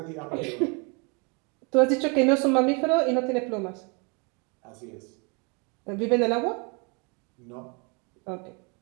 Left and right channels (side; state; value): left; quieter; 32.9 dB